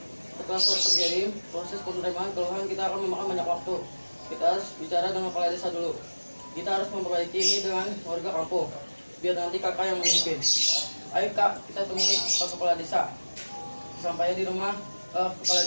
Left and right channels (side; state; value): both; inverted; correlation -1.00